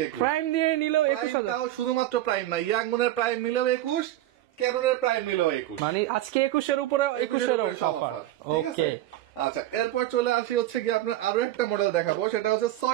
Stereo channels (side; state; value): left; quieter; 14.4 dB